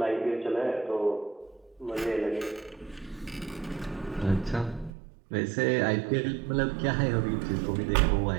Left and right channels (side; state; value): left; drops out; at 4.9 s